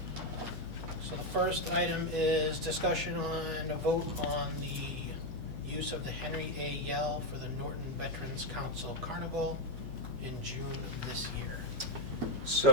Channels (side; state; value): left; noise; hum, 10 dB below the sound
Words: So the first item is discussion on a vote on the use of the Henry A. Yell for the Norton Veterans Council Carnival in June of this year.